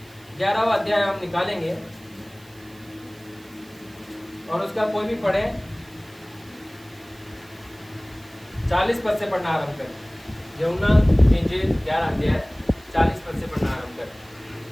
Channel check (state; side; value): noise; right; hiss, 26 dB below the sound